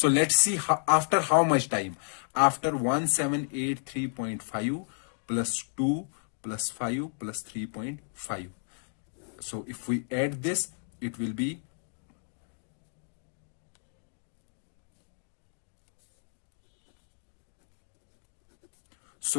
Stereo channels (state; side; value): silent; right; digital silence